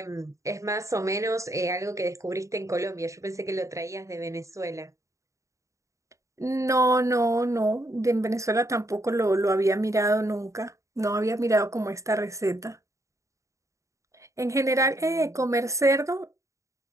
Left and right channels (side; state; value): left; late; 0.15 ms